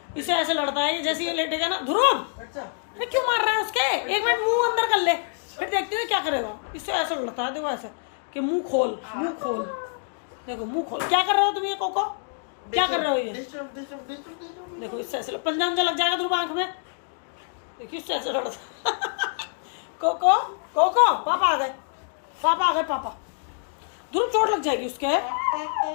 इसे ऐसे लड़ता है ये, जैसे ये लेटेगा ना ध्रुव क्यों मार रहा है उसके, एक मिनट मुंह अंदर कर ले, फिर देखते हैं क्या करेगा। इससे ऐसे लड़ता है, देखो ऐसे कि मुंह खोल, मुंह खोल, देखो मुंह खोल। क्या कर रहे हो तुम ये कोको, क्या कर रहे हो ये? देखो इससे ऐसे पंजा उंजा लग जाएगा ध्रुव आंख में, देखिए इससे ऐसे लड़ता कोको कोको पापा आ गए, पापा आ गए, पापा। ध्रुव चोट लग जाएगी उसके,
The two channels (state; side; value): silent; right; digital silence